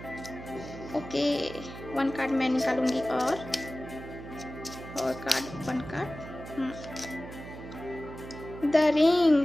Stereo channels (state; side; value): noise; right; hum, 12 dB below the sound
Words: ओके, 1 कार्ड मैं निकालूंगी, और card 1 card, the